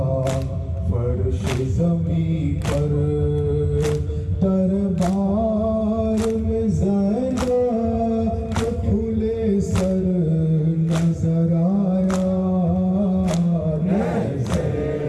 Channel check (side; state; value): both; identical; correlation 1.00